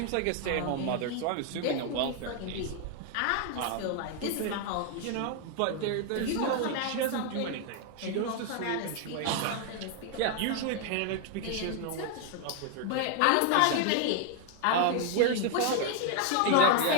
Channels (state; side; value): different; both; correlation 0.00